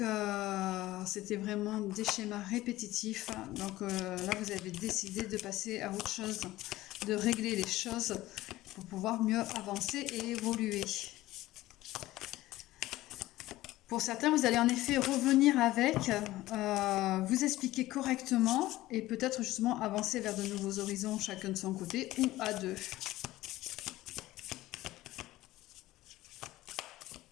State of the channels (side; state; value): right; quieter; 16.8 dB